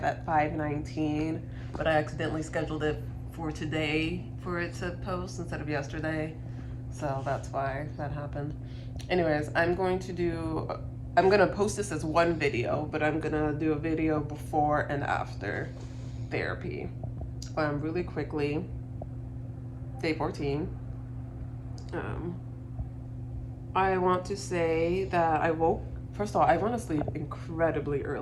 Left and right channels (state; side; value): identical; both; correlation 1.00